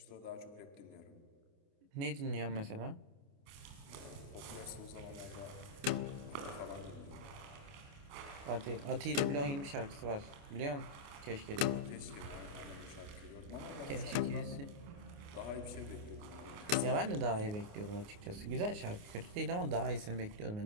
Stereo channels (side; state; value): left; late; 29 ms